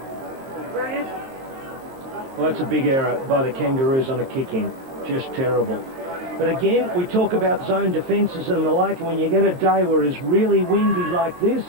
Well, that's a big error by the Kangaroos on a kick-in. Just terrible. But again, we talk about zone defences and the like, and when you get a day where it's really windy like this,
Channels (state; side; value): late; left; 23 ms